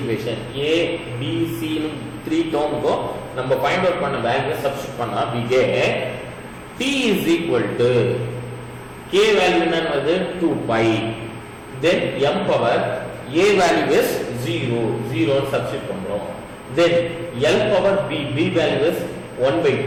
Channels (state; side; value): identical; both; correlation 1.00